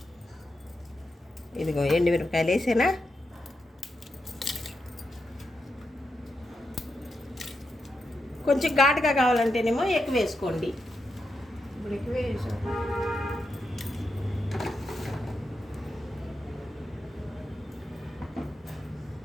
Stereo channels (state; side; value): normal; both; correlation 0.86